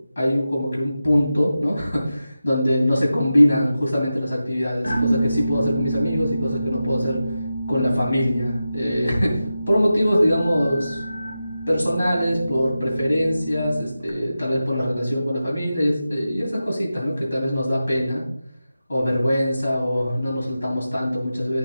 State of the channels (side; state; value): both; inverted; correlation -0.92